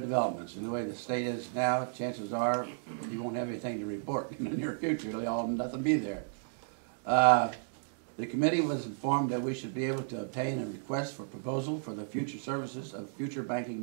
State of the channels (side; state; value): left; silent; digital silence